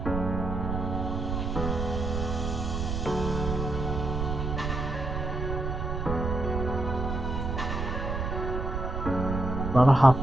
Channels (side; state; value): right; noise; rumble, 3 dB below the sound